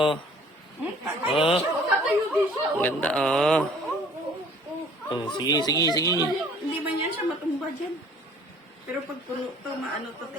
Oh, Tatayo din siya. ang ganda oh. Oh, sige, sige, sige. Hindi ba niyan siya matumba dyan? Pero pag puno to, maano to, te,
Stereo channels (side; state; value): both; normal; correlation 0.53